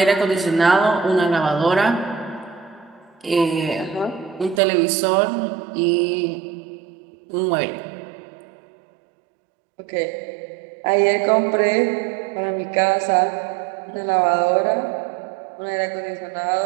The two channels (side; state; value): left; drops out; at 4.6 s